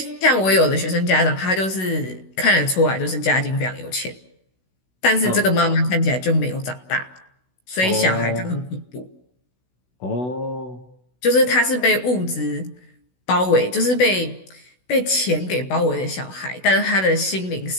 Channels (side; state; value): right; late; 16 ms